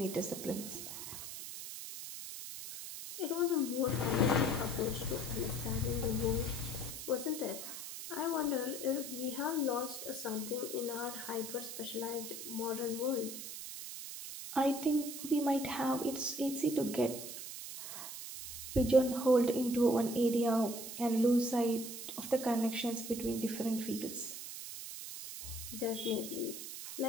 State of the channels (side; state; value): right; noise; hiss, 9 dB below the sound